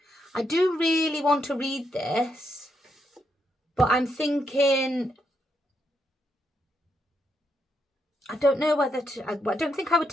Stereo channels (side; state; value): both; normal; correlation 0.79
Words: I do really want to read this, but I'm thinking, I don't know whether to, I don't think I would